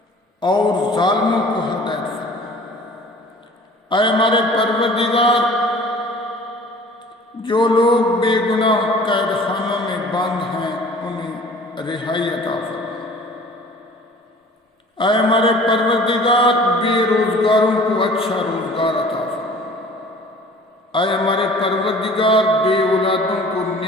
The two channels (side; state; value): both; normal; correlation 0.48